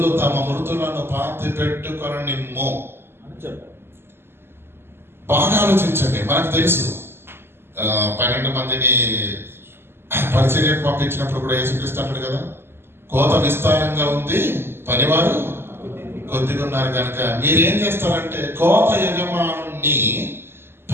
తమ మృతులను పాతి పెట్టుకొనిమ్ము అని చెప్పారు. బాగా ఆలోచించండి. మనకు తెలుసు 12 మందిని పరిచర్యకు పంపించినప్పుడు కూడా యేసుక్రీస్తు అంటాడు కదా, కోత విస్తారంగా ఉంది, పనివారు కొద్దిగా ఉన్నారు కనుక మీరేం చేస్తారంటే కోత యజమానుని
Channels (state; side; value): late; left; 0.11 ms